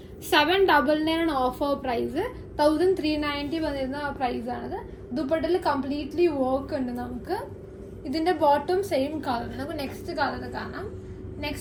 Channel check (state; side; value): identical; both; correlation 1.00